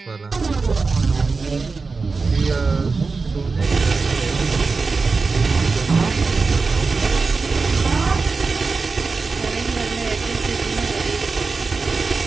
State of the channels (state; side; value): quieter; left; 4.3 dB